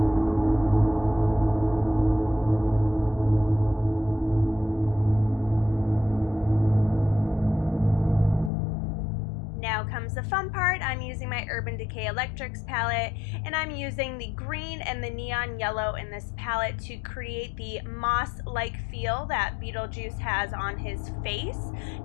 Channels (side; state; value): right; drops out; at 8.5 s